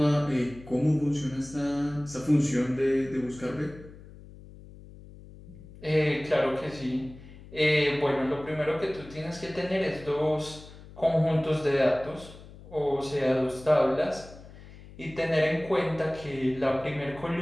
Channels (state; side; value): noise; left; hum, 18 dB below the sound